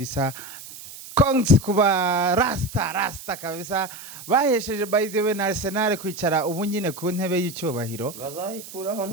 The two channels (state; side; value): noise; right; hiss, 14 dB below the sound